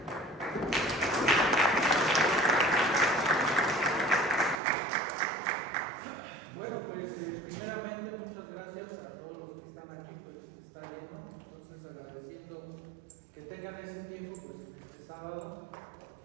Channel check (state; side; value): drops out; left; at 4.6 s